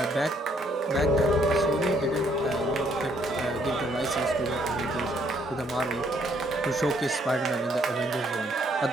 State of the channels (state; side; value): normal; both; correlation 0.68